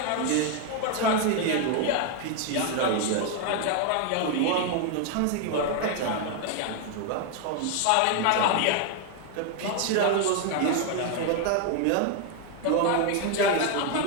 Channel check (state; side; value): different; both; correlation 0.01